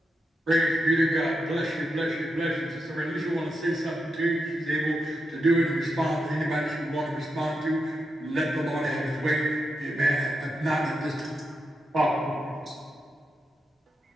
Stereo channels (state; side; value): normal; both; correlation 0.86